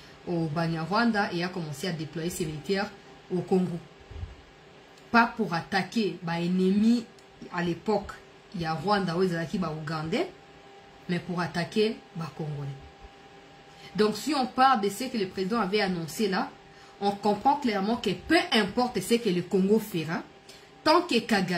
au Banyarwanda et a commencé à déployer ses militaires au Congo. Pas pour attaquer l'ennemi à l'époque, il y a Rwanda ou Ougandais, mais pour attaquer les Congolais. Donc si on parle de ce que le président avait annoncé là, on comprend clairement que peu importe ce que le Congo fera, tant que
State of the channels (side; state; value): both; identical; correlation 1.00